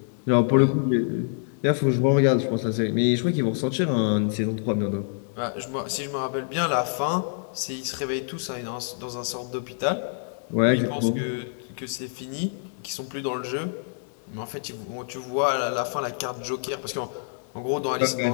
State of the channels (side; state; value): right; silent; digital silence